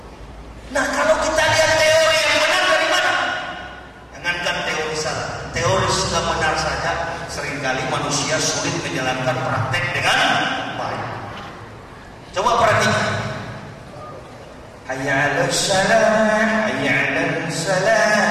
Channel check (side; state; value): both; identical; correlation 1.00